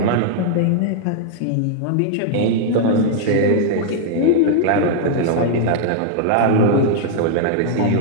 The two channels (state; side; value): different; both; correlation -0.01